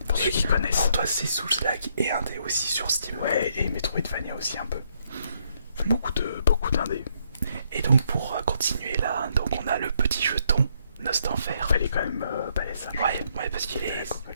pour ceux qui connaissent. Pour toi, c'est Souls-like et un dé aussi sur Steam. Ouais, et Metroidvania aussi un peu. Beaucoup d'indés. Et donc, pour continuer là, donc on a le petit jeton Nostanfer. Elle est quand même balèze. Ouais, parce qu'il est.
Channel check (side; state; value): both; inverted; correlation -0.72